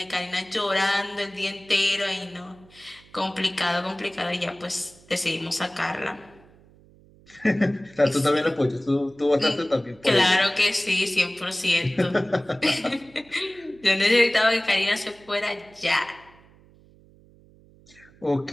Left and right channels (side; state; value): right; noise; hum, 27 dB below the sound